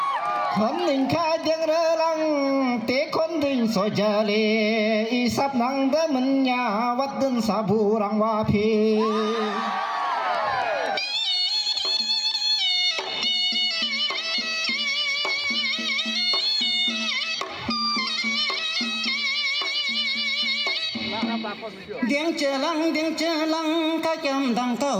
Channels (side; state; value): both; identical; correlation 1.00